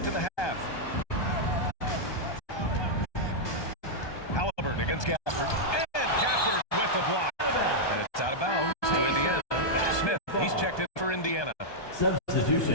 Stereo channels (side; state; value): right; late; 1.2 ms